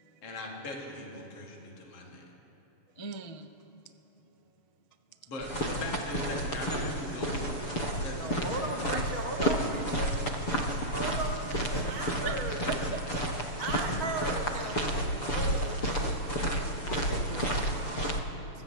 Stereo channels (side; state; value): right; late; 6.9 ms